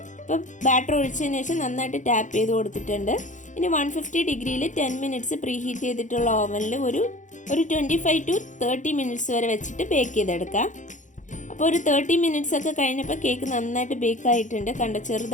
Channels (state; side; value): late; right; 0.36 ms